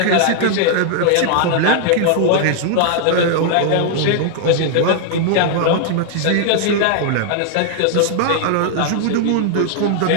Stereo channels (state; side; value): different; both; correlation 0.00